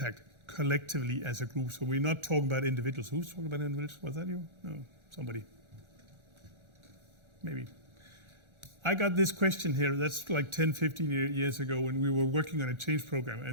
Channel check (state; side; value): late; left; 1.4 ms